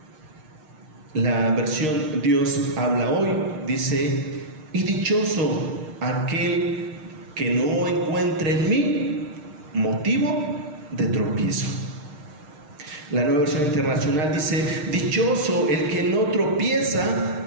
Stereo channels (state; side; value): late; left; 6.5 ms